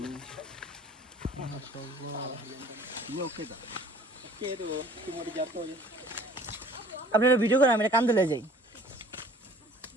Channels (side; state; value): both; normal; correlation 0.52